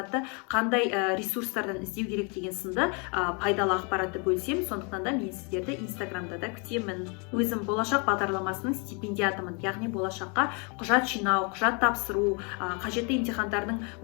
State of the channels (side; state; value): right; quieter; 34.3 dB